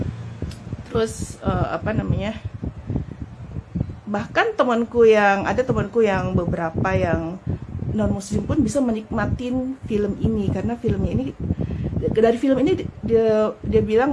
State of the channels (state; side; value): identical; both; correlation 1.00